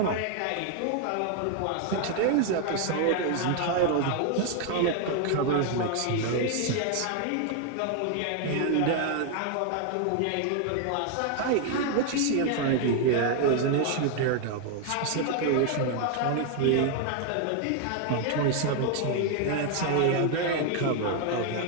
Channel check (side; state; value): both; different; correlation 0.00